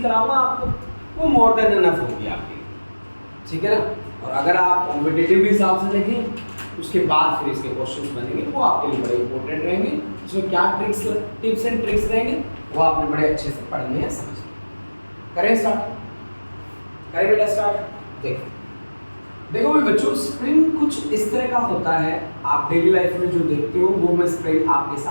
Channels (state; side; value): inverted; both; correlation -1.00